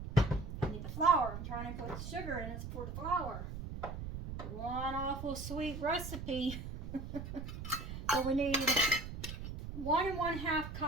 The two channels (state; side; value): noise; right; rumble, 7 dB below the sound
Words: I need the flour. I'm trying to put sugar in it for the flour. One awful sweet recipe. So we need 1 1/2